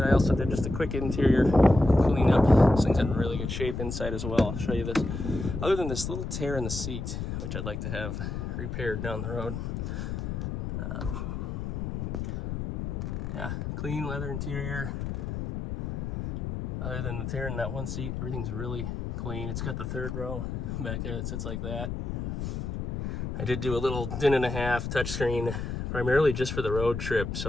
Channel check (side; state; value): left; noise; rumble, 4 dB below the sound